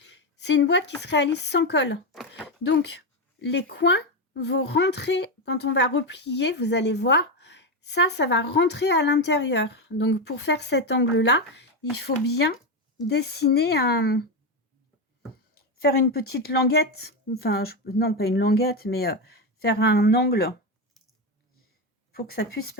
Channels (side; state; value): both; normal; correlation 0.11